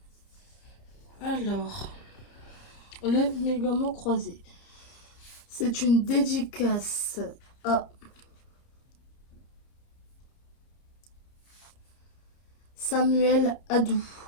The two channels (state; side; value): late; right; 30 ms